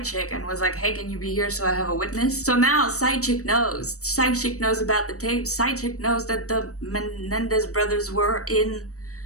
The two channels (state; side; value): late; right; 0.65 ms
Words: chick and was like, hey, can you be here so I have a witness? So now side chick knows. Side chick knows about the tape. Side chick knows that the Menendez brothers were in